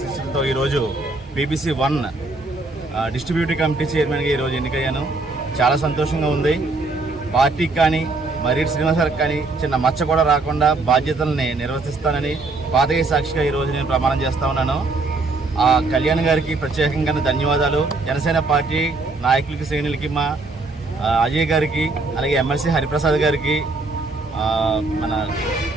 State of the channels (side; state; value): left; quieter; 3.4 dB